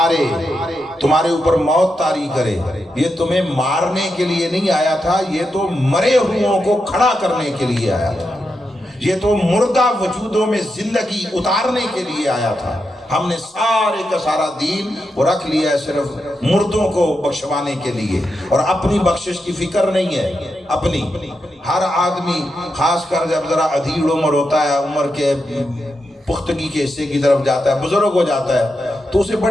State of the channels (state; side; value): normal; both; correlation 0.86